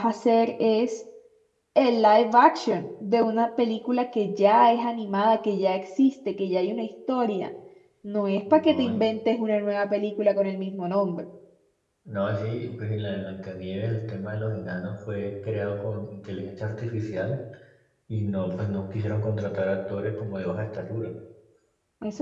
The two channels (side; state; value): both; identical; correlation 1.00